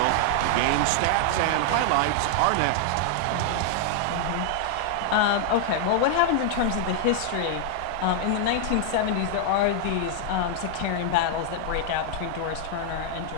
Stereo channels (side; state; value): both; different; correlation -0.01